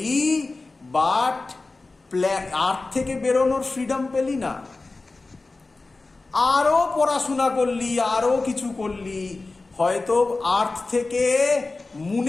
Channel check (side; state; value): right; quieter; 3.5 dB